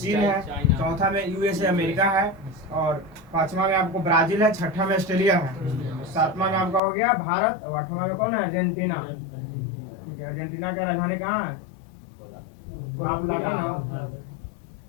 है, चौथा में यूएसए अमेरिका है, और 5वां में आपको ब्राजील है, 6ठा में ऑस्ट्रेलिया है, 7वां में आपका हो गया भारत, और 8वां में कौन है? अर्जेंटीना। ठीक है, अर्जेंटीना का राजधानी कहाँ है? ला प्लाटा ना,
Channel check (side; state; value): right; drops out; at 6.8 s